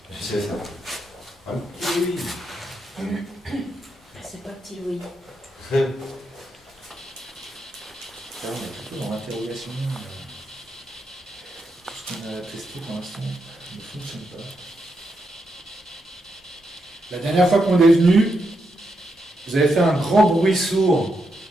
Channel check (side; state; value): both; normal; correlation 0.83